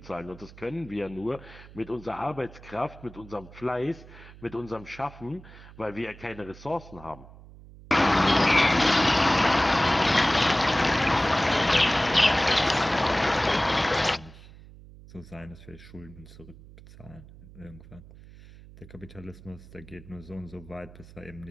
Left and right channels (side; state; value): right; noise; hum, 19 dB below the sound